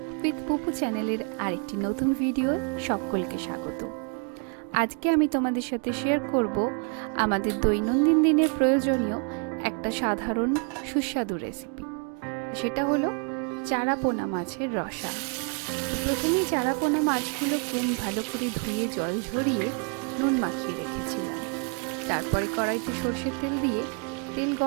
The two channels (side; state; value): left; quieter; 34.9 dB